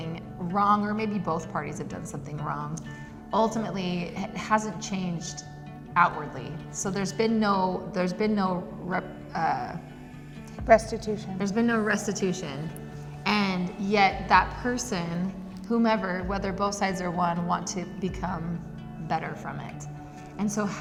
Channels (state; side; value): identical; both; correlation 1.00